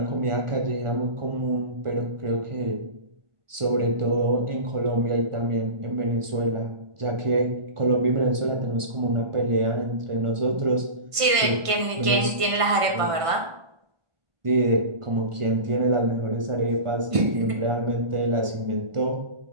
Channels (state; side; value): late; left; 1.5 ms